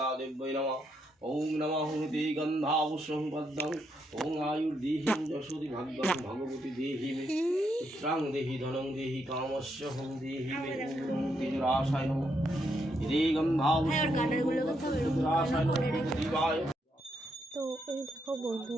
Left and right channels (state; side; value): normal; both; correlation 0.78